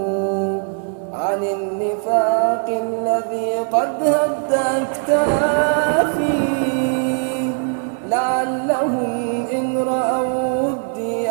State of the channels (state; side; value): silent; left; 56 dB below the other